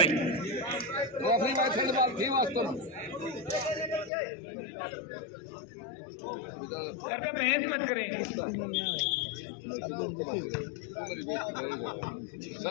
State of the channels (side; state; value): right; drops out; at 4.1 s